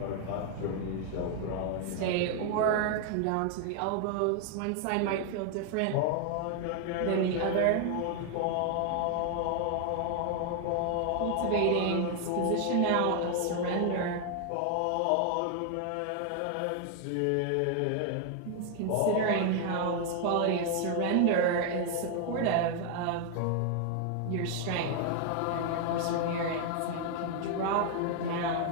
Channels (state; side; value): different; both; correlation 0.00